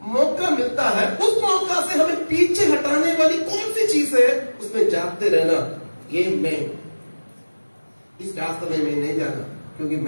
मौका मिलता है, उस मौका से हमें पीछे हटाने वाली कौन सी चीज है, उसमें जागते रहना। ये मैं इस रास्ते में मैं नहीं जाना, क्योंकि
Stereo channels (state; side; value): inverted; both; correlation -1.00